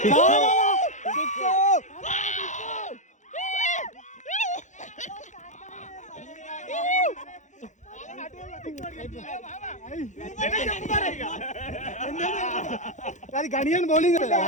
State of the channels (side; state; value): right; late; 0.35 ms